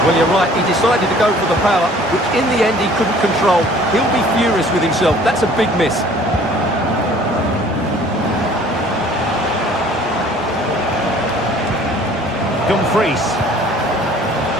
Well, you're right, he decided to go for the power, which in the end he couldn't control. He'll be furious with himself. That's a big miss. Dumfries.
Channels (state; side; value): normal; both; correlation 0.52